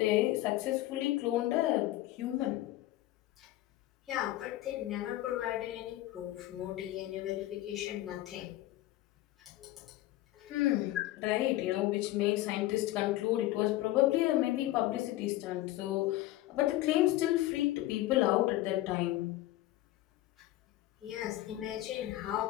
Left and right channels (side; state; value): right; quieter; 16.0 dB